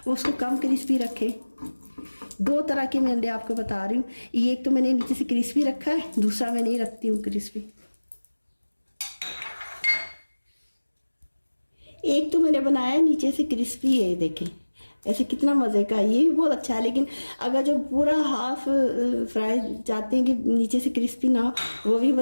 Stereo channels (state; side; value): inverted; both; correlation -1.00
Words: वो उसको कम क्रिस्पी रखें। दो तरह के मैं अंडे आपको बता रही हूँ। ये एक तो मैंने नीचे से क्रिस्पी रखा है, दूसरा मैं नहीं रखती हूँ क्रिस्पी। एक तो मैंने बनाया नीचे से क्रिस्पी है, देखें ऐसे कितना मज़े का, ये भी बहुत अच्छा है। लेकिन अगर जो पूरा हाफ फ्राई चाहते हैं कि नीचे से क्रिस्पी ना हो, वो भी